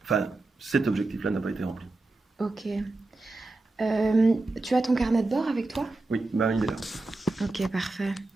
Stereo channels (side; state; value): left; quieter; 3.1 dB